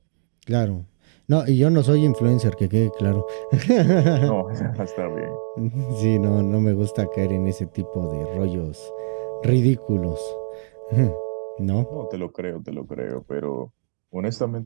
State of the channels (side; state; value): left; silent; digital silence